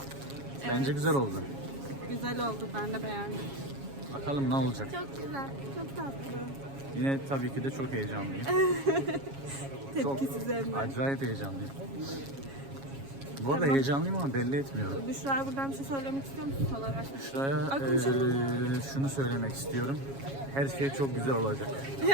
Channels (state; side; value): late; left; 7.3 ms